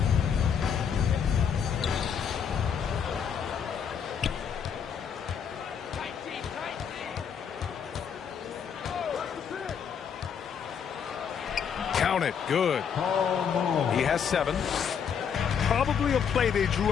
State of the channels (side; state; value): right; quieter; 7.3 dB